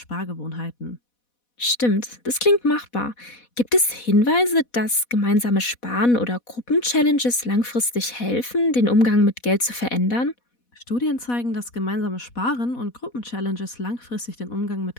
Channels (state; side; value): late; right; 4.1 ms